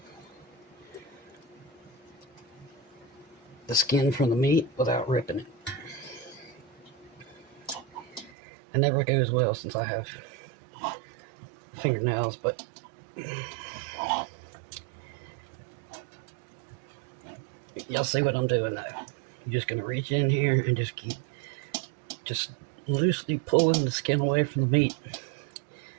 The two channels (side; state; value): left; drops out; at 8.3 s